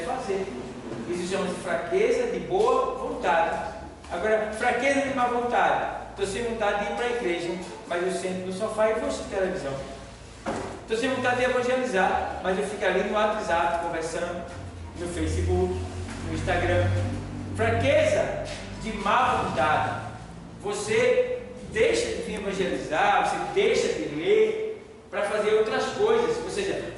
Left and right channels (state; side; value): identical; both; correlation 1.00